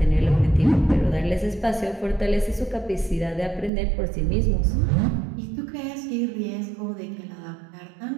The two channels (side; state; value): left; drops out; at 3.7 s